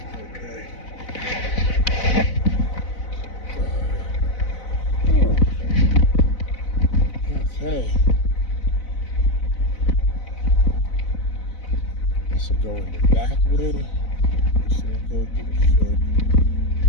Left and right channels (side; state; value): right; late; 4.0 ms